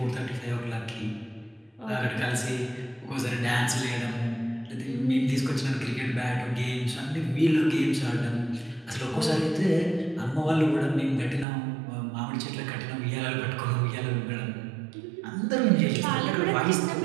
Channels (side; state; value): left; drops out; at 11.5 s